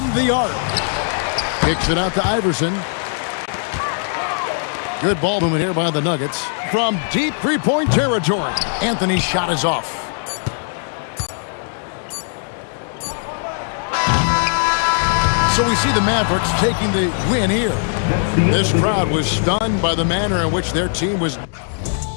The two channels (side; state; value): right; silent; digital silence